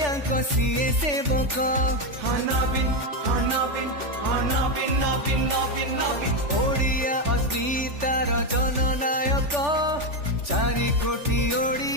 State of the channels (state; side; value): late; left; 3.4 ms